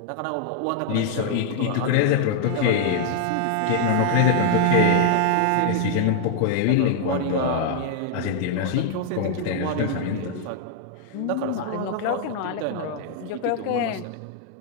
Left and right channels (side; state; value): both; different; correlation -0.01